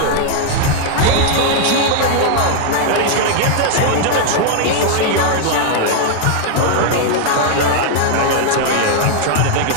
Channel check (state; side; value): different; both; correlation 0.00